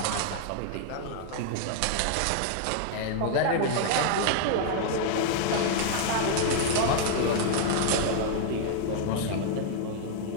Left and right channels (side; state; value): both; different; correlation -0.01